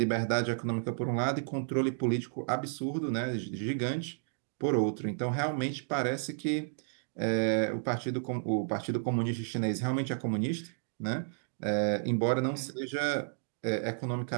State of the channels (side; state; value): left; silent; digital silence